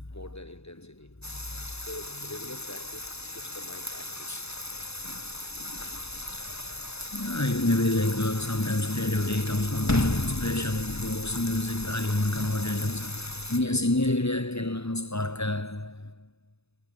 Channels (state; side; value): late; right; 0.79 ms